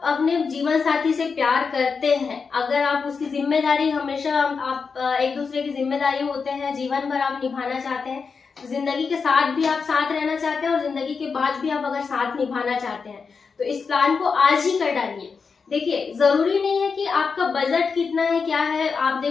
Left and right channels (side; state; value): right; quieter; 5.3 dB